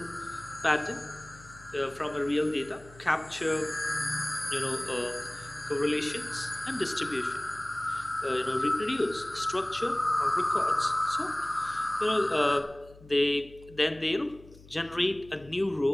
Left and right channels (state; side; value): noise; left; hum, 22 dB below the sound